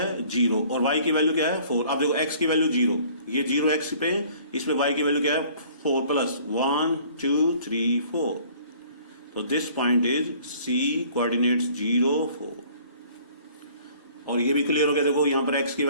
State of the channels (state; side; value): inverted; both; correlation -0.54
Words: 0 और y की वैल्यू क्या है 4। अब देखो x की वैल्यू 0, ये 0 x पे, इसमें y की वैल्यू क्या है 4 प्लस 1 2 3 4। तो this point is C, coordinates 0 4। और ये भी क्लियर हो गया। देखो यहां पर x की